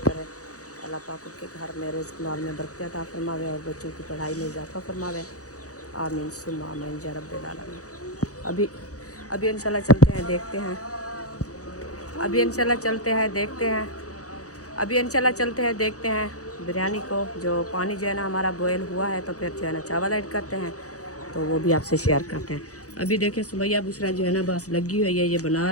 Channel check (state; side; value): late; right; 0.66 ms